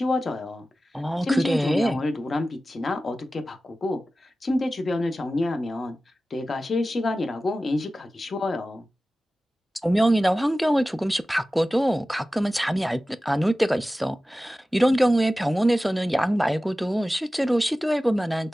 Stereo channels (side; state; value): both; normal; correlation 0.96